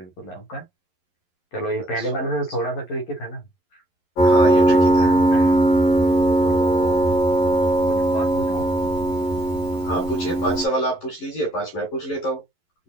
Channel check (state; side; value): late; right; 11 ms